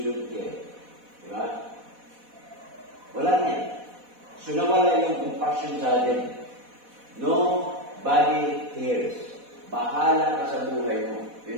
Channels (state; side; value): late; left; 4.1 ms